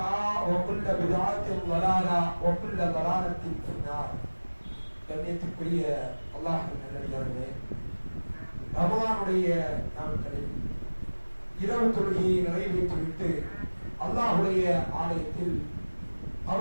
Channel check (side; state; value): both; inverted; correlation -1.00